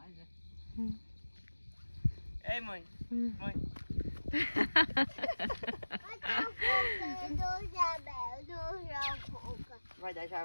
é? Ei, mãe. Mãe. Vai dar já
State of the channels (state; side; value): inverted; both; correlation -1.00